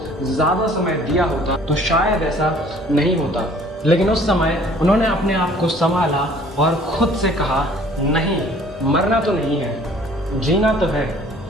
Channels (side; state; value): both; normal; correlation 0.54